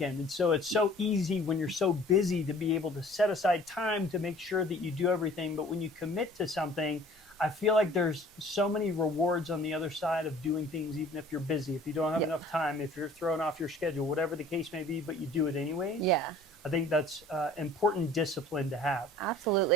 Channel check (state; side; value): normal; both; correlation 0.50